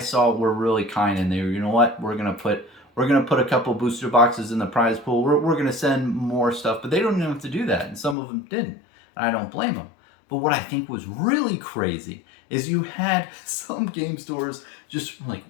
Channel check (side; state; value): right; drops out; at 8.2 s